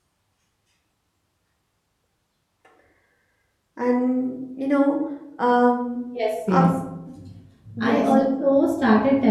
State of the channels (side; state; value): both; identical; correlation 1.00